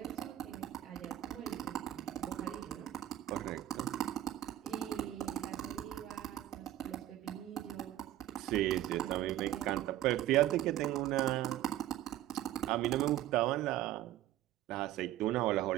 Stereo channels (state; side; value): quieter; left; 13.4 dB